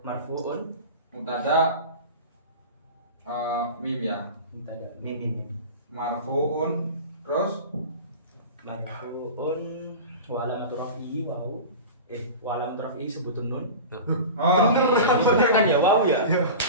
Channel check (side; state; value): both; inverted; correlation -0.32